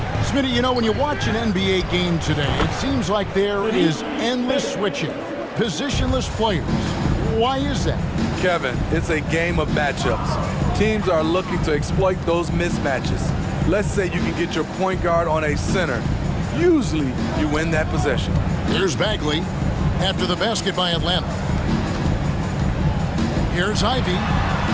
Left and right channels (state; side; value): identical; both; correlation 1.00